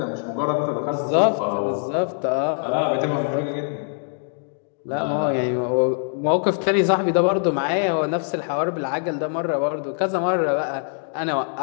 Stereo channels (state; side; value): silent; right; digital silence